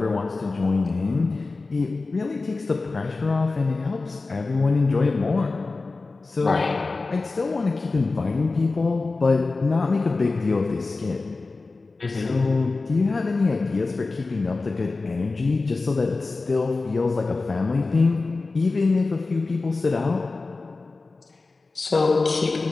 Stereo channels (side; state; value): right; quieter; 3.7 dB